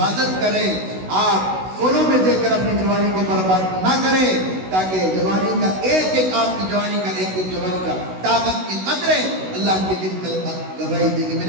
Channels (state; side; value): late; left; 16 ms